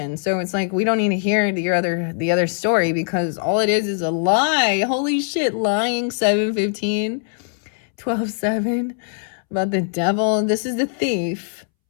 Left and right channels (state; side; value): silent; right; 65 dB below the other